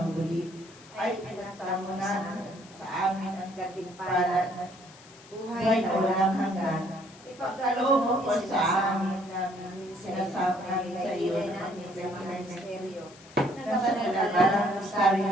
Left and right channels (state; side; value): noise; left; hiss, 22 dB below the sound